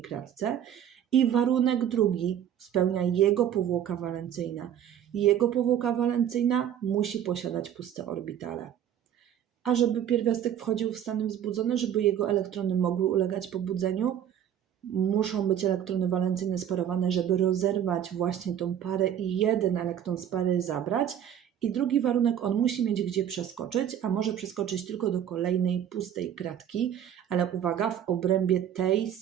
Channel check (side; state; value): left; quieter; 9.9 dB